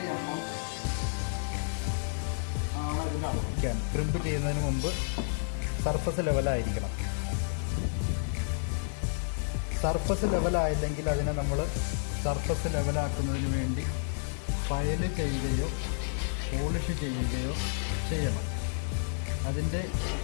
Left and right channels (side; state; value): right; silent; digital silence